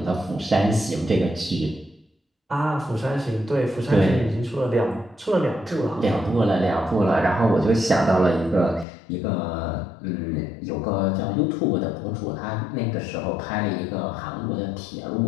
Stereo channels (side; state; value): right; drops out; at 8.8 s